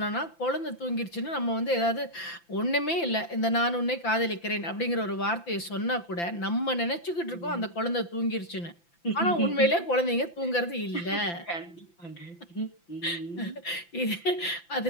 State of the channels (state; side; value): late; right; 5.9 ms